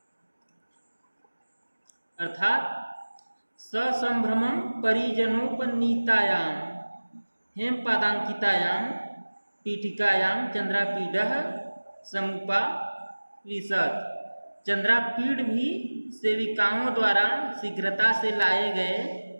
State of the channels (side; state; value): both; inverted; correlation -1.00